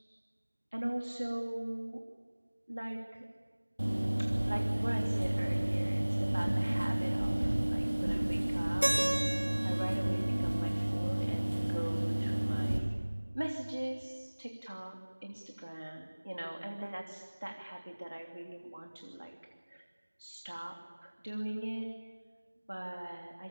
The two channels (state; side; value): inverted; both; correlation -1.00